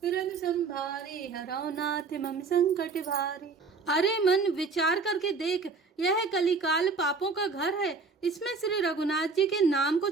तुरंत संभारे, हरौ नाथ मम संकट भारे। अरे मन, विचार करके देख, यह कलिकाल पापों का घर है। इसमें श्री रघुनाथ जी के नाम को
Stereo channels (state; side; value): quieter; left; 4.5 dB